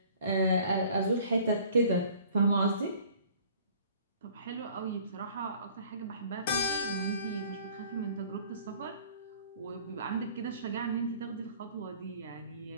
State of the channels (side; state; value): both; inverted; correlation -0.51